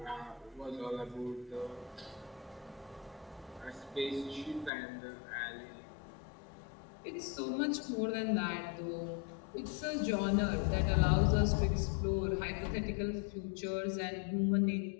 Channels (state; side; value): drops out; right; at 4.7 s